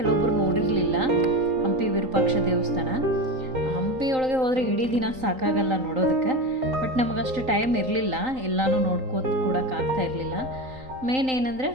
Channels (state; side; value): late; left; 3.8 ms